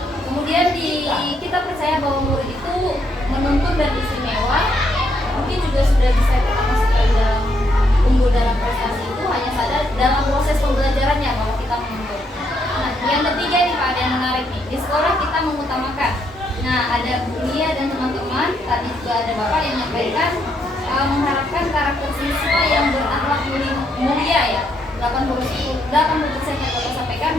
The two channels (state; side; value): normal; both; correlation 0.75